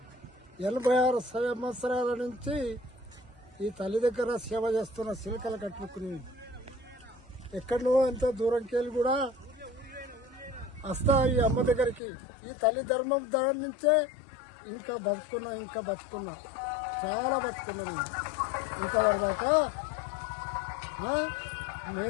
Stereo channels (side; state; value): right; drops out; at 12.0 s